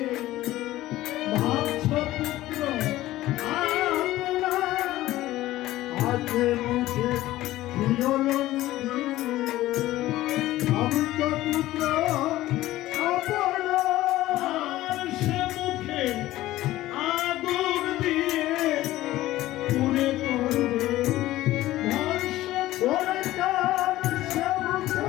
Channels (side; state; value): right; quieter; 15.8 dB